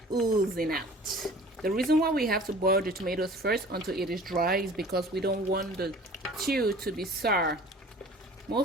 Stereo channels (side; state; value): both; normal; correlation 0.46